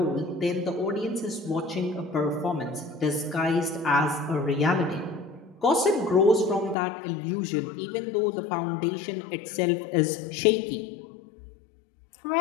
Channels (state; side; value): drops out; right; at 6.8 s